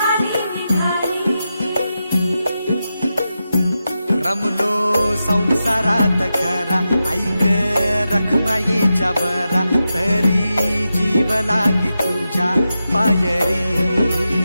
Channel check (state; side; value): inverted; both; correlation -0.90